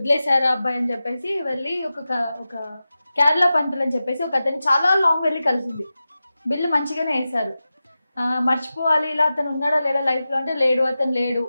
అబ్బాయి అని చెప్పేసి వెళ్ళి ఒక కేరళ పంతులు అని చెప్పేసి ఒక అతను చాలా లాంగ్ వెళ్ళి కలిసింది. బిల్లు మంచిగానే వేశారు. మర్చిపోవాలి ఇలా అతను ఉన్నాడో లేడో లైఫ్లో అంటే లేడు,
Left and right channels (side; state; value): both; inverted; correlation -0.94